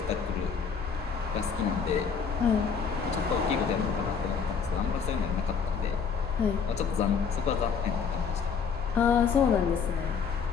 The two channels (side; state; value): right; quieter; 6.1 dB